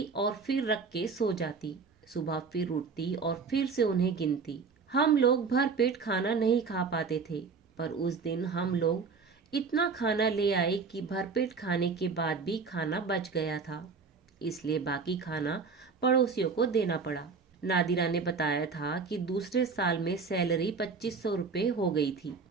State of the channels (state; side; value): quieter; left; 5.0 dB